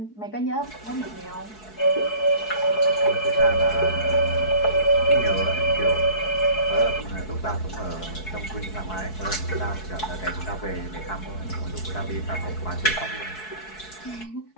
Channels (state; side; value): late; right; 4.6 ms